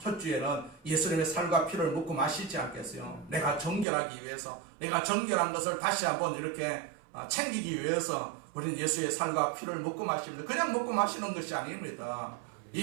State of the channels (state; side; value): drops out; left; at 3.9 s